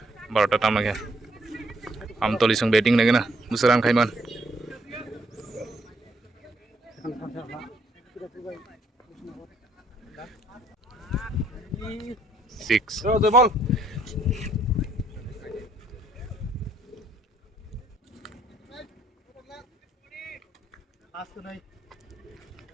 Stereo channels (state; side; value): normal; both; correlation 0.68